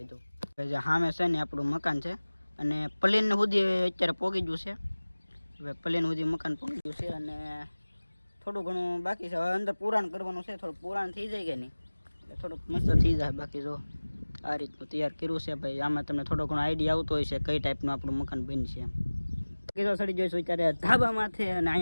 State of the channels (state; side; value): inverted; both; correlation -1.00